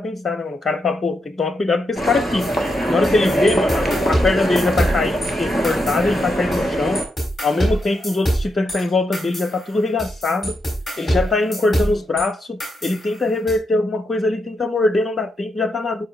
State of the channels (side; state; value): both; normal; correlation 0.83